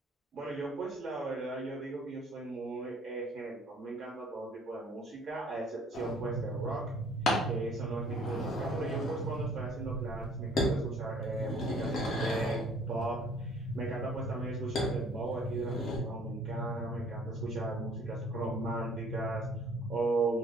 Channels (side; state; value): both; normal; correlation 0.56